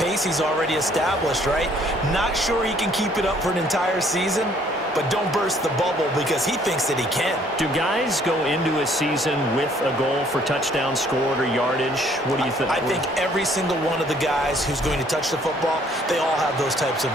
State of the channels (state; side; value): normal; both; correlation 0.62